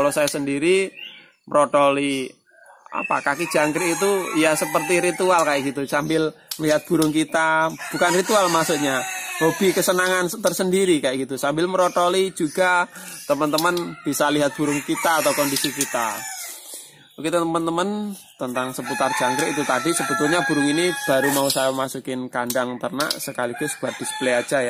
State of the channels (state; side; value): identical; both; correlation 1.00